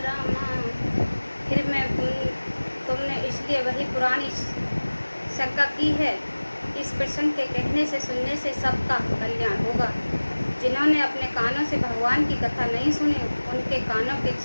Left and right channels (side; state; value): both; inverted; correlation -1.00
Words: रामा। फिर मैं तुमने इसलिए वही पुरानी शंका की है। इस प्रसंग के कहने से सुनने से सबका कल्याण होगा। जिन्होंने अपने कानों से भगवान की कथा नहीं सुनी उनके कानों के